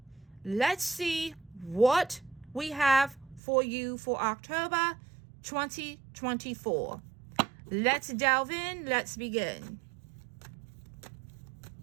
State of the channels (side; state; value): left; drops out; at 3.4 s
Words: let's see what we have for you for October 2024. Let's delve in. Let's begin.